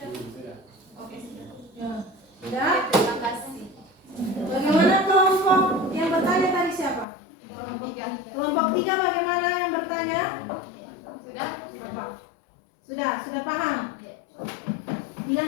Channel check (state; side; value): drops out; right; at 7.1 s